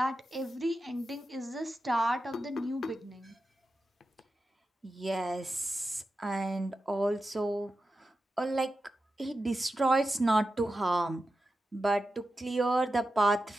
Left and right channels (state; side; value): normal; both; correlation 0.91